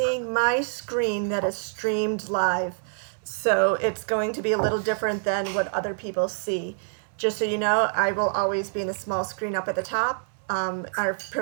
my screen that is streamed live. So it's going to be a little different than what other people see. Just so you know, I will always be in the small screen up at the top. Our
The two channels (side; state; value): left; silent; digital silence